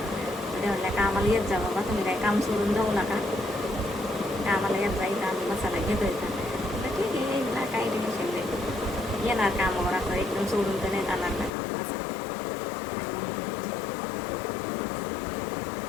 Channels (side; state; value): right; drops out; at 11.5 s